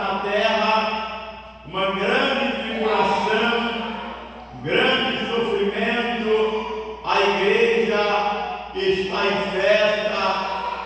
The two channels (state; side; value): identical; both; correlation 1.00